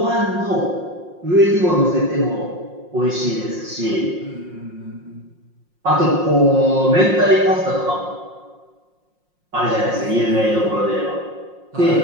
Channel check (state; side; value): late; left; 5.6 ms